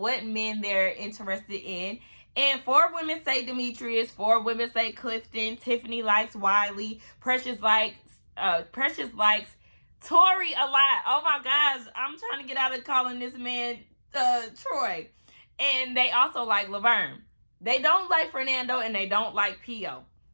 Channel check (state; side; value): inverted; both; correlation -1.00